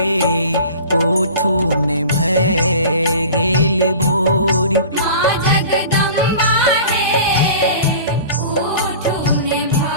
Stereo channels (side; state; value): both; inverted; correlation -0.41